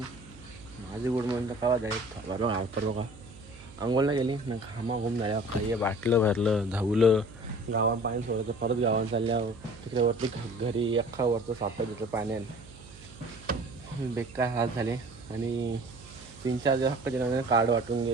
माझी गुड मॉर्निंग कवा जाईल बरोबर आवतर बघा. अंघोळला गेली ना घामा घुम झाल्या खाई बाटलं भरलं धावलं गावात पाणी सोडायचं परत गावात चालल्यावर तिकडे वरती घरी अख्खा वरचं सापड देतं पाण्यात बेकार हात झाले. आणि 3-4 दिवस हक्क दिला कार्ड वाटून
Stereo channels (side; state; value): right; noise; hum, 19 dB below the sound